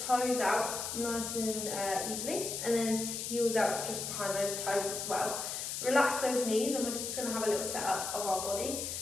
out nice and easily, and then heels out just behind those toes as well. Relax those knees, and we're just going to have a little setup of our body.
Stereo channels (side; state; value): left; noise; hiss, 4 dB below the sound